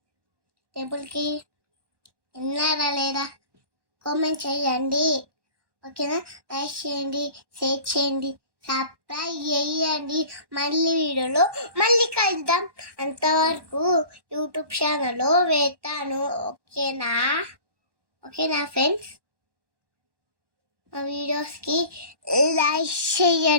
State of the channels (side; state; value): left; late; 1.1 ms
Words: టెంపుల్కి విన్నారా లేదా కామెంట్ చేయండి, ఓకేనా? లైక్ చేయండి, షేర్ చేయండి, సబ్స్క్రైబ్ చేయండి. వీడియోలో మళ్ళీ కలుద్దాం. అంతవరకు యూట్యూబ్ ఛానల్లో వేస్తాను, ఓకేనా ఫ్రెండ్స్? మా వీడియోస్కి లైక్